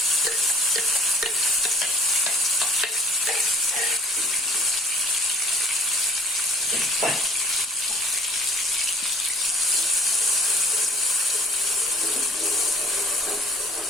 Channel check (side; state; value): both; normal; correlation 0.51